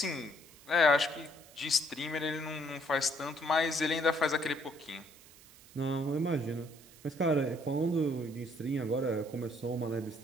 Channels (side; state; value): right; noise; hiss, 23 dB below the sound